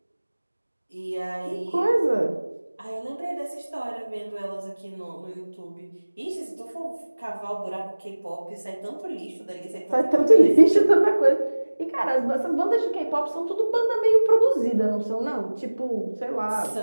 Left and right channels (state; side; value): inverted; both; correlation -1.00